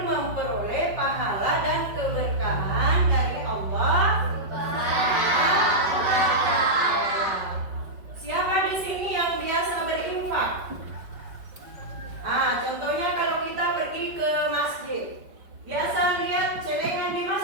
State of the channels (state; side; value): late; left; 5.2 ms